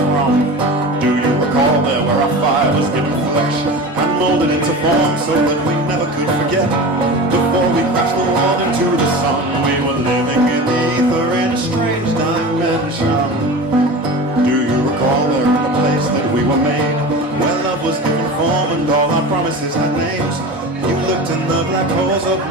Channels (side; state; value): both; normal; correlation 0.31